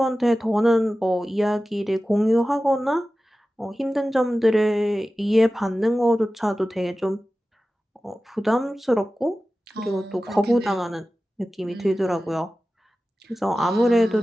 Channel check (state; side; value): normal; both; correlation 0.95